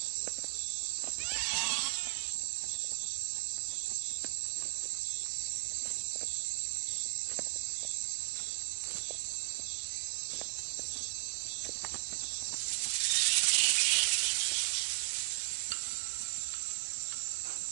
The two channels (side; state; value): left; silent; 54 dB below the other